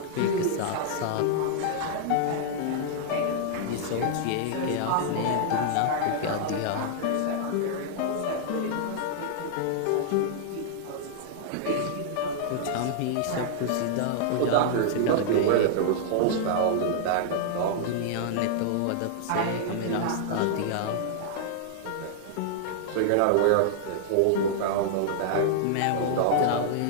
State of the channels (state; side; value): different; both; correlation -0.01